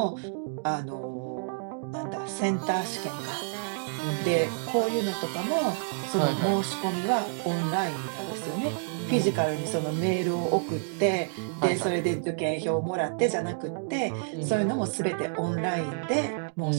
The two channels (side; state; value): left; silent; digital silence